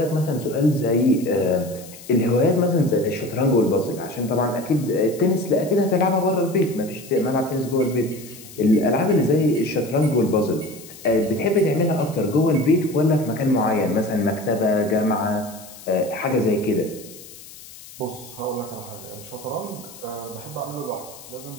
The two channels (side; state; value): left; noise; hiss, 18 dB below the sound